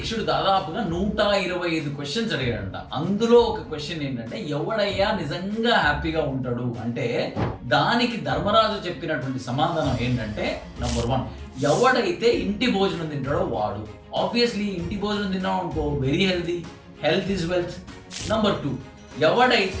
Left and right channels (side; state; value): both; identical; correlation 1.00